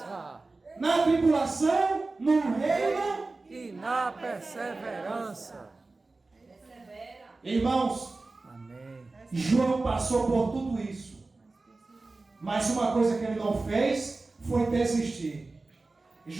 Na tribulação, no reino. E na perseverança. Irmãos, Amém. João passou por tudo isso. Mas uma coisa que ele não fez foi desistir.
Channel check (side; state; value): left; quieter; 3.5 dB